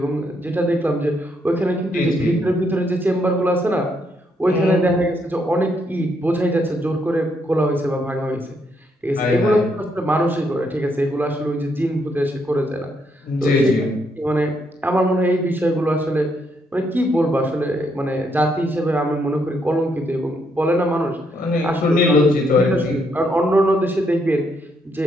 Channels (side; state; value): both; normal; correlation 0.75